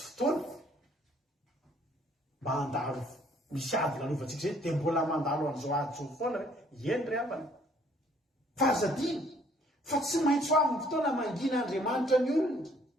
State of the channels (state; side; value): normal; both; correlation 0.61